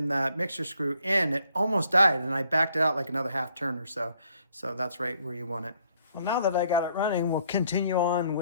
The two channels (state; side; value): inverted; both; correlation -0.68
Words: that mixture screw in, it almost died and I backed it out like another half turn or so. So that's right where you want it. Well, now that I got it running, we'll continue on